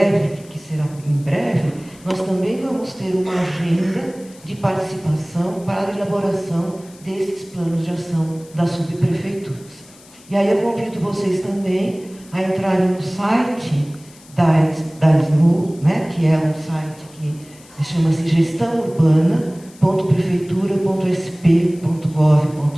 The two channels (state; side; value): noise; left; hiss, 24 dB below the sound